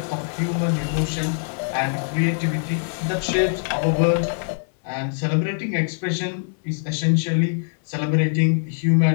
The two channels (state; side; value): silent; right; 64 dB below the other